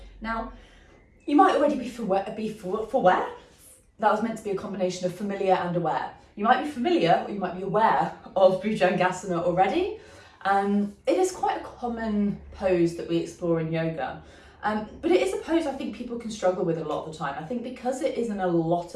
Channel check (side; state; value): both; identical; correlation 1.00